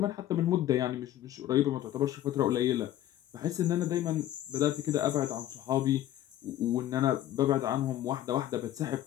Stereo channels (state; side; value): quieter; right; 12.8 dB